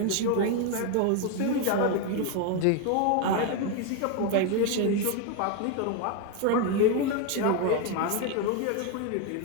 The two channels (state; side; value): different; both; correlation 0.01